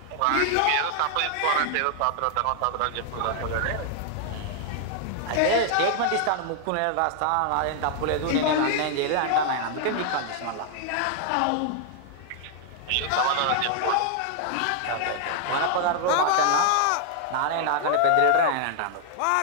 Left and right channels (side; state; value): both; different; correlation 0.00